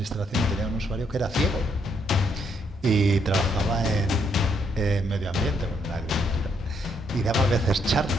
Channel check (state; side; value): normal; both; correlation 0.74